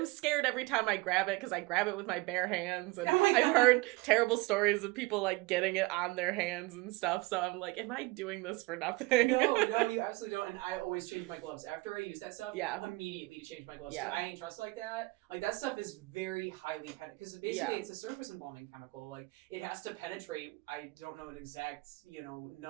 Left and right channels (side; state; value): left; quieter; 23.2 dB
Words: scared every time I grab it because I grab it with my bare hands. And I've heard terrible stories of people like getting it on their hands and stuff. So I'm like, am I doing this for nothing? No, you absolutely don't. And I always change my gloves. After I use that stuff, immediately to change my gloves. Yeah. I ain't trust like that. Like that stuff is very highly penetrating because basically it's a surface embalming chemical. Like it has to penetrate. I don't know an exact,